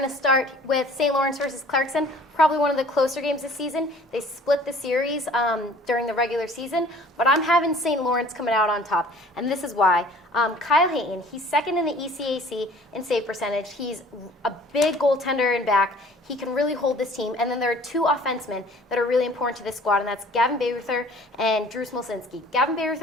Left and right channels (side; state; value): both; normal; correlation 0.51